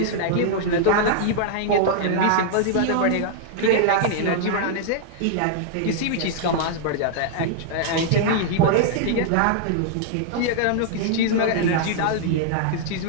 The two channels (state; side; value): different; both; correlation -0.01